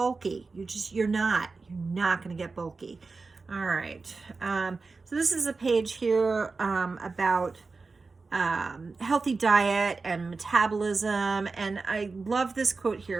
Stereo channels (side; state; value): left; quieter; 4.1 dB